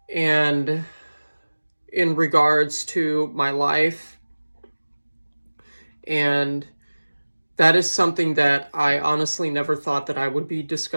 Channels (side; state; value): both; inverted; correlation -1.00